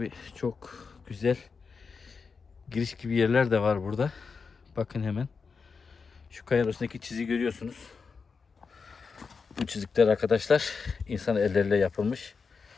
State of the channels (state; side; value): quieter; right; 5.2 dB